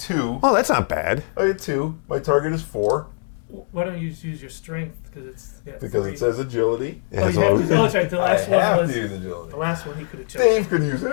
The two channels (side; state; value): right; silent; 57 dB below the other